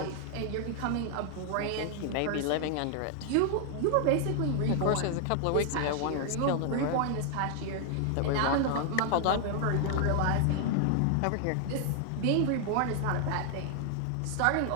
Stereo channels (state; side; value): different; both; correlation 0.00